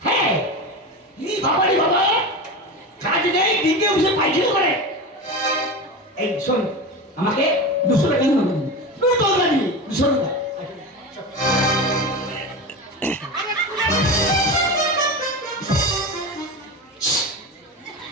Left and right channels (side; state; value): both; normal; correlation 0.24